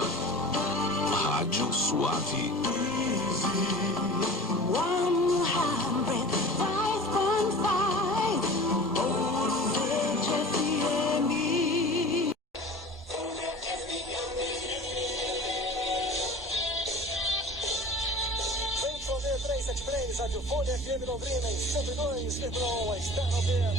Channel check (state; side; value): normal; both; correlation 0.39